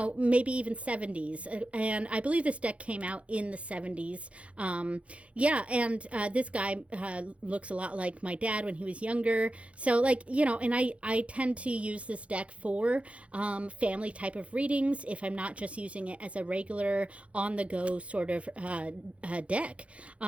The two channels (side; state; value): left; late; 0.063 ms